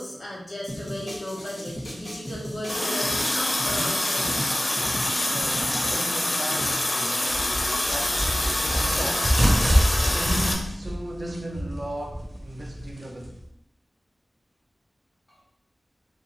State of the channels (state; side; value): normal; both; correlation 0.97